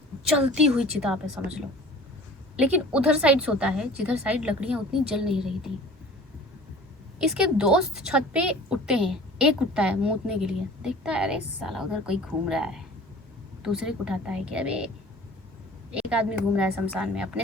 जलती हुई चिता पे समझ लो। लेकिन उधर साइड सोता है जिधर साइड लकड़ियाँ उतनी जल नहीं रही थी। इसके दोस्त छत पे उठते हैं, एक उठता है मूतने के लिए, देखता है अरे साला उधर कोई घूम रहा है। दूसरे को उठाता है कि अबे एक आदमी घूम रहा है शमशान में,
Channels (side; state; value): both; normal; correlation 0.44